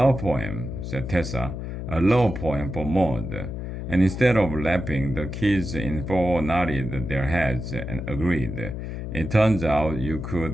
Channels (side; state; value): left; noise; hum, 6 dB below the sound